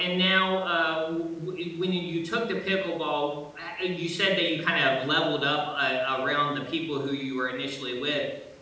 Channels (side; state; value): both; identical; correlation 1.00